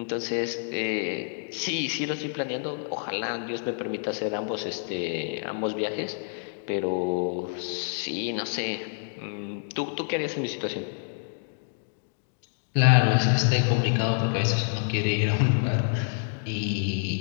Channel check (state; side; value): silent; right; digital silence